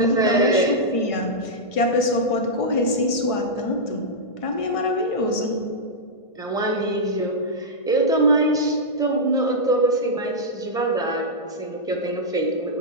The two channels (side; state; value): right; late; 1.5 ms